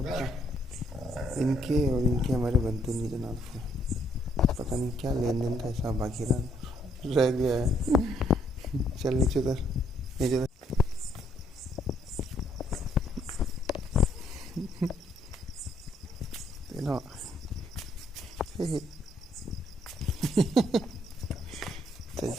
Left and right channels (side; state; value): both; normal; correlation 0.69